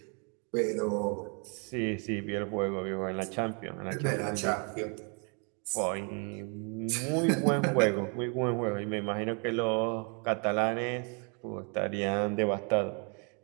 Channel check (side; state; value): left; quieter; 36.8 dB